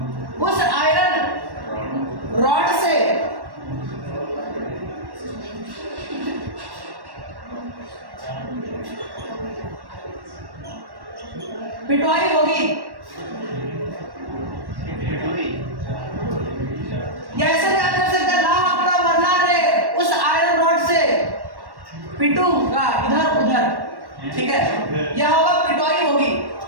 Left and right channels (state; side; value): late; left; 1.1 ms